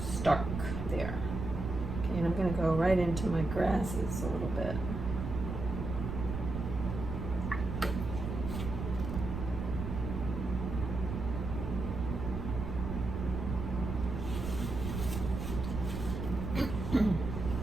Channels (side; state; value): right; noise; rumble, 4 dB below the sound